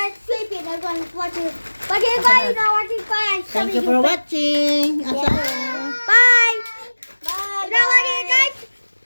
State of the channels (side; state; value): both; inverted; correlation -1.00